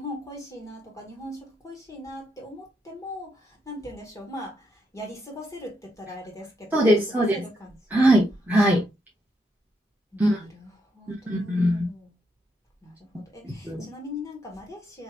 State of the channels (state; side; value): normal; both; correlation 0.78